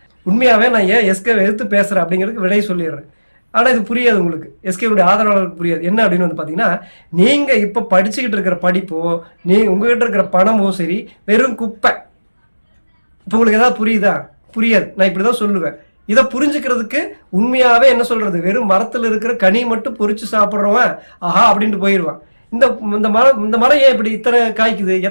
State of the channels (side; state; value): both; inverted; correlation -1.00